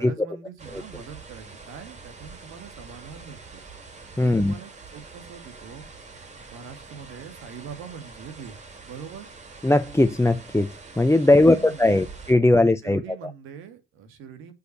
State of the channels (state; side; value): normal; both; correlation 0.90